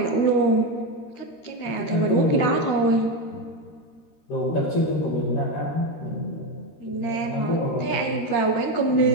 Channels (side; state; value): right; late; 13 ms